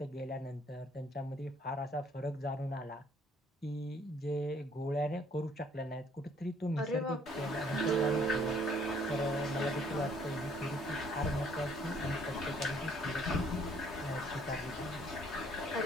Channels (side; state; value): both; normal; correlation 0.62